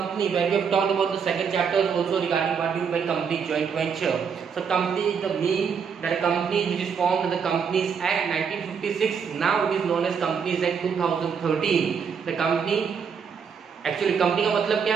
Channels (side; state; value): left; quieter; 6.5 dB